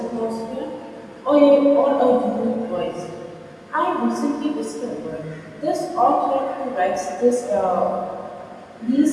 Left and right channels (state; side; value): identical; both; correlation 1.00